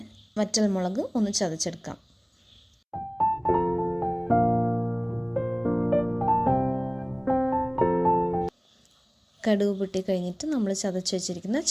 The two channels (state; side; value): identical; both; correlation 1.00